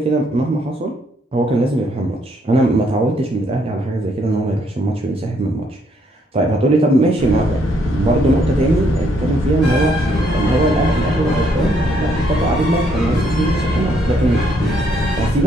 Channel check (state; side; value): normal; both; correlation 0.70